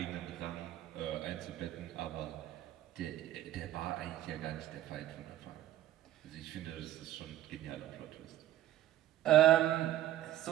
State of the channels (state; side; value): quieter; left; 13.5 dB